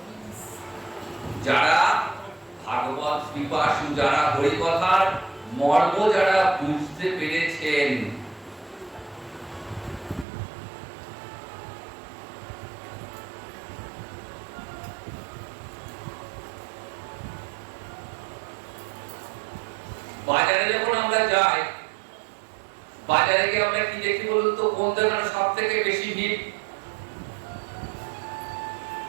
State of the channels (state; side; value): drops out; left; at 10.2 s